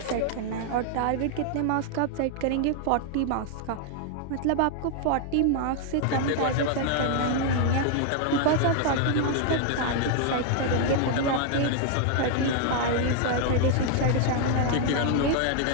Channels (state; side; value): different; both; correlation 0.00